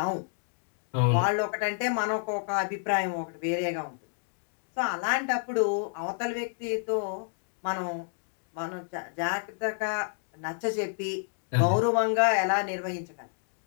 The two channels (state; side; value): silent; right; digital silence